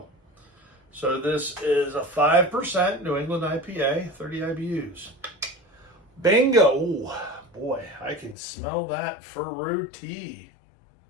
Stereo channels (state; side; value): drops out; right; at 8.3 s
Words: So this is a 5% New England IPA, 30 IBUs. Bingo! Ooh, boy, I can smell that fruity.